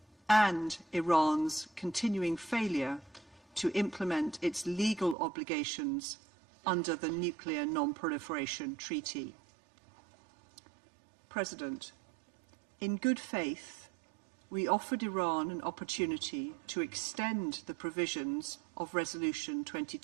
and Iran's continuing failure to implement its legal obligations under the Nuclear Non-Proliferation Treaty. President, in good faith, we offered Iran an opportunity to extend the provisions of Resolution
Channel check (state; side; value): drops out; left; at 5.2 s